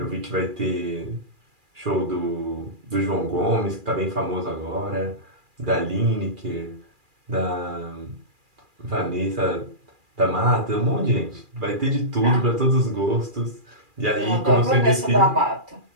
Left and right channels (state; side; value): late; left; 2.4 ms